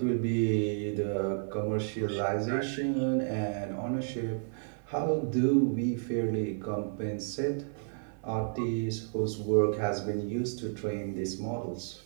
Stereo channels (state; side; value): silent; left; 57 dB below the other